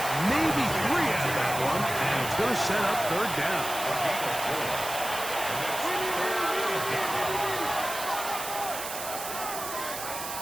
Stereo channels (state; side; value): noise; right; hiss, 7 dB below the sound